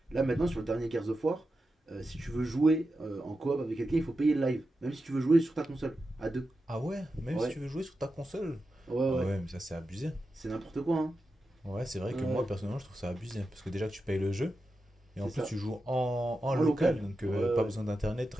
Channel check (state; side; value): normal; both; correlation 0.90